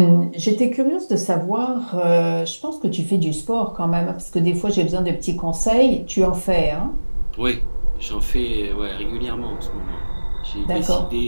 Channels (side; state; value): both; inverted; correlation -1.00